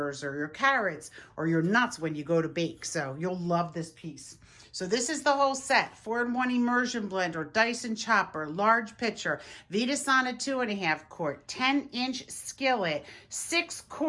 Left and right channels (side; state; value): both; identical; correlation 1.00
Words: or your carrots or your nuts when you go to bake. So you'll love this piece. So this is the whole set: 4-in-1 Immersion Blender, Dyson chopper, large pitcher, Vida Sana 2.5 quart, 10-inch skillet, 6